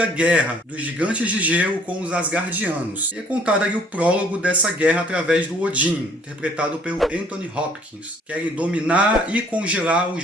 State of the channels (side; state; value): both; normal; correlation 0.59